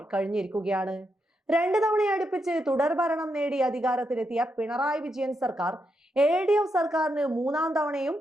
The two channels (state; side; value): normal; both; correlation 0.82